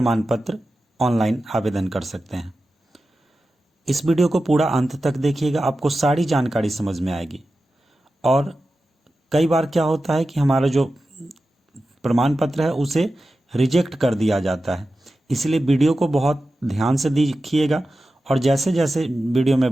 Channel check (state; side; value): normal; both; correlation 0.93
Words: पत्र ऑनलाइन आवेदन कर सकते हैं। इस वीडियो को पूरा अंत तक देखिएगा, आपको सारी जानकारी समझ में आएगी। और कई बार क्या होता है कि हमारा जो प्रमाण पत्र है उसे रिजेक्ट कर दिया जाता है, इसलिए वीडियो को बहुत ध्यान से देखिएगा और जैसे जैसे वीडियो में